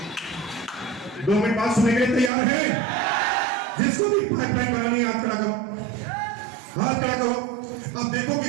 2 मिनट बाद सुनने के लिए तैयार है? जिसको भी पाइपलाइन बनानी है हाथ खड़ा करो, हाथ खड़ा करो। अब देखो कि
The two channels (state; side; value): drops out; left; at 2.3 s